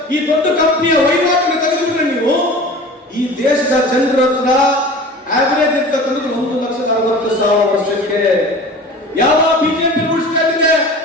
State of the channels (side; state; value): both; normal; correlation 0.39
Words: ಈ ದೊಡ್ಡ ಕಂಪನಿಯ ವಹಿವಾಟನ್ನು ತೆಗೆದುಬಿಟ್ರೆ ನೀವು ಈ ದೇಶದ ಜನರ ಹತ್ರ ಆವರೇಜ್ ಇರ್ತಕ್ಕಂಥದ್ದು 1,60,000 ವರ್ಷಕ್ಕೆ. ಯಾವ ಬಿಜೆಪಿ ರೂಲ್ಸ್ ಸ್ಟೇಟ್ ಇದೆ